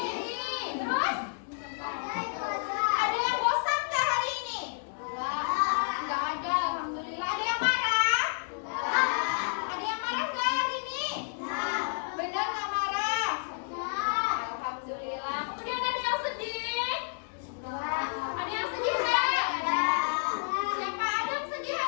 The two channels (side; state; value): right; silent; digital silence